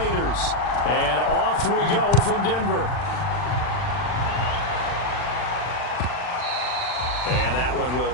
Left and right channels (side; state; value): right; late; 40 ms